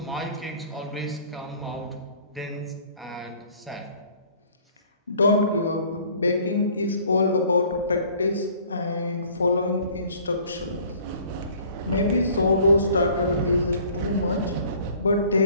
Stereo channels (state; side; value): inverted; both; correlation -0.53